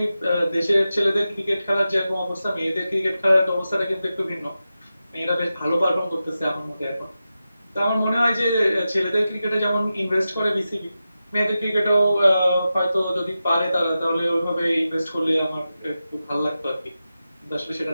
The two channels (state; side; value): inverted; both; correlation -0.92